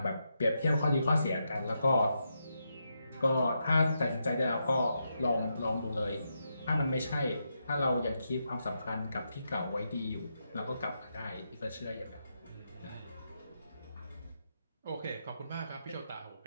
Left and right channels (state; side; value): inverted; both; correlation -0.84